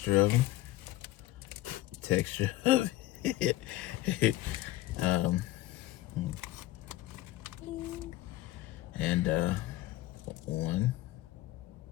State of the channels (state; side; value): quieter; right; 15.8 dB